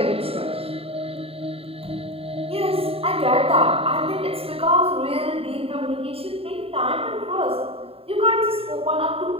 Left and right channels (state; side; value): late; left; 0.28 ms